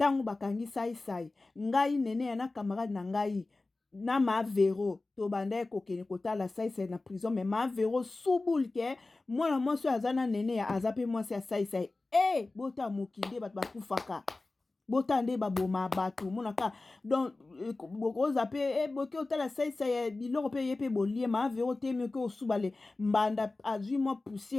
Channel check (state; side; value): quieter; right; 3.3 dB